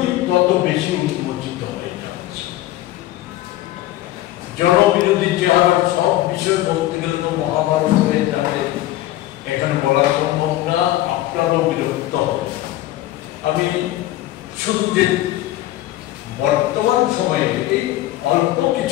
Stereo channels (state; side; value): quieter; right; 15.2 dB